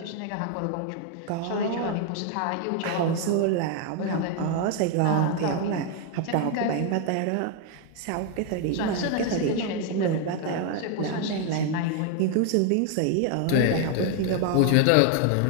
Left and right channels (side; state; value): both; different; correlation 0.00